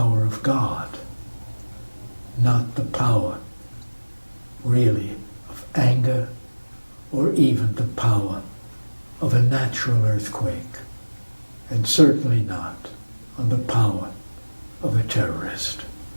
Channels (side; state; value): both; inverted; correlation -1.00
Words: of God, not the power, really, of anger, or even the power of a natural earthquake, and certainly not on the power of a terrorist.